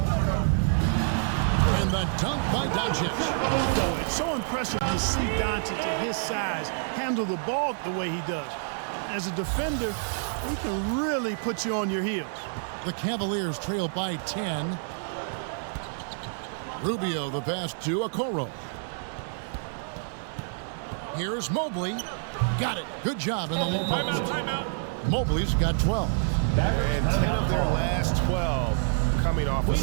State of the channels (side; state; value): left; silent; 60 dB below the other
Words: And the dunk by Doncic. Boy, it's so impressive to see Doncic at his size handle the ball the way he does. As a defender, he can really put you on your heels. The Cavaliers trail by 10. Rubio the pass to Okoro. Here's Mobley. Got it. Good job in the low post. Timeout. Mobley's got 12. And 10 of their last 12 coming off